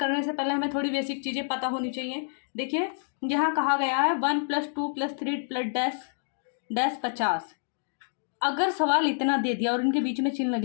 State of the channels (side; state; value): right; silent; digital silence